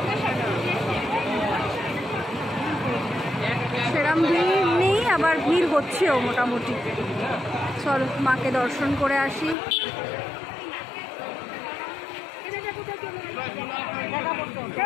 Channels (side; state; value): right; drops out; at 9.6 s